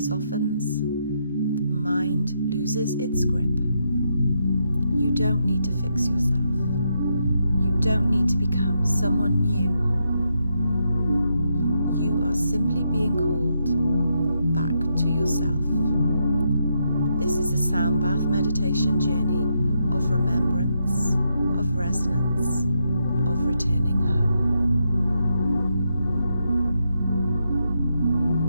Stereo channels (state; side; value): inverted; both; correlation -0.80